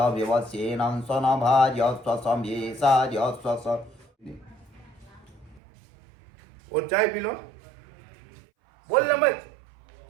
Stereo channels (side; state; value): left; drops out; at 5.6 s